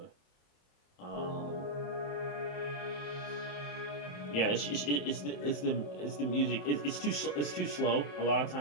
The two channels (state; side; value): late; right; 27 ms